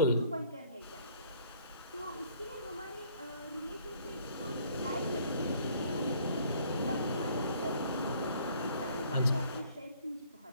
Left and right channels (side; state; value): both; inverted; correlation -0.59